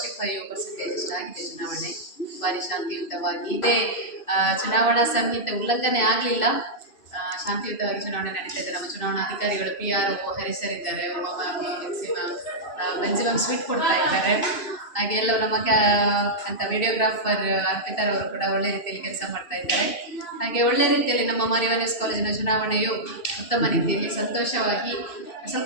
ಅಷ್ಟು ಆಗಿದೆ. ಚುನಾವಣೆ ಭಾರಿ ಶಾಂತಿಯುತವಾಗಿ ಇದೆ. ಚುನಾವಣಾ ಸಂಹಿತೆ ಉಲ್ಲಂಘನೆ ಆಗಲಿಲ್ಲ. ಶಾಂತಿಯುತವಾಗಿ ಚುನಾವಣೆ ನಡೀತಾ ಇದೆ. ನಮ್ಮ ಚುನಾವಣಾ ಅಧಿಕಾರಿಗಳು PRO ಹರಿಸರಿದ್ದಾರೆ. ಬೆಂಜಿಮಮ್ ಸ್ವೀಟ್ ಕೊಡ್ತಾ ಇದ್ದಾರೆ. ಹಾಗೆ ಎಲ್ಲವೂ ನಮ್ಮ ಅಂತ ವಿಡಿಯೋಗ್ರಾಫರ್ ಅರ್ಪಿತಾರ್ ಅವರು ಕೂಡ ಒಳ್ಳೆ ರೀತಿಯಲ್ಲಿ ಕೆಲಸ ಮಾಡ್ತಾ ಇದ್ದಾರೆ. ಹಾಗೆ ಒಳ್ಳೆ ರೀತಿಯಲ್ಲಿ ನಮ್ಮ ಮಾರಿವಾನಸ್ ಕಾಲೇಜಿನ ಚುನಾವಣೆಯು ಉತ್ತಮ ರೀತಿಯಲ್ಲಿ ಸಂತೋಷವಾಗಿ, ಸ್ವಲ್ಪ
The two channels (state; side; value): late; right; 2.6 ms